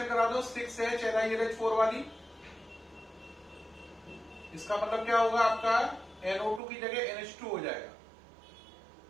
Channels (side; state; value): left; drops out; at 6.6 s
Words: करा दो 6H LiLH4 वाली। इसका मतलब क्या होगा, आपका NO2 की जगह NH2 हो जाएगा,